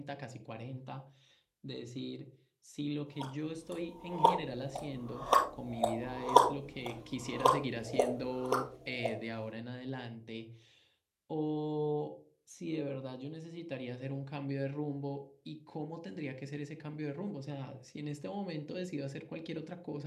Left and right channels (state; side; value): identical; both; correlation 1.00